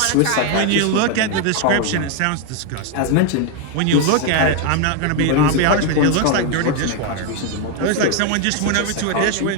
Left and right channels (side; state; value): both; different; correlation 0.01